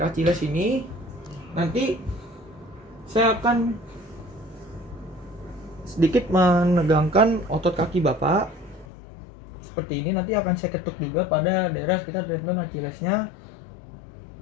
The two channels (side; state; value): right; drops out; at 8.8 s